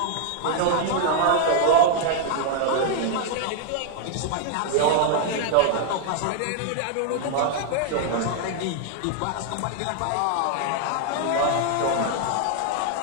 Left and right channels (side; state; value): both; different; correlation 0.00